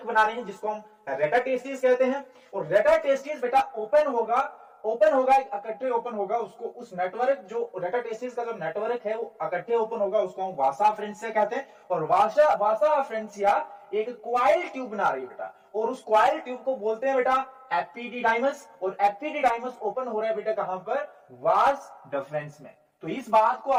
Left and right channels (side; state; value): both; identical; correlation 1.00